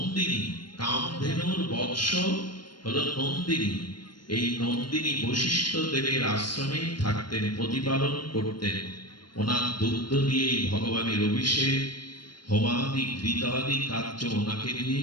কামধেনুর বৎস হলো নন্দিনী। এই নন্দিনী বশিষ্ঠ দেবের আশ্রমে থাকতেন, প্রতিপালন করতেন। ওনার দুগ্ধ দিয়েই ভগবানের অভিষেক, হোমাদি ঘৃতাদি কার্য ওনাকে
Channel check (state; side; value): late; right; 0.72 ms